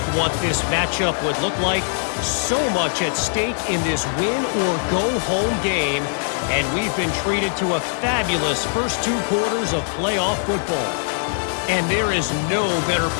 what this matchup would look like. So much at stake in this win-or-go-home game, and we've been treated to a fabulous first two quarters of playoff football. And there is no better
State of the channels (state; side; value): silent; right; digital silence